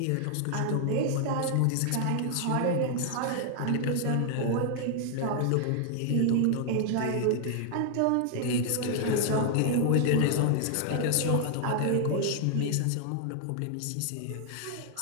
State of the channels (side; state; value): both; different; correlation 0.00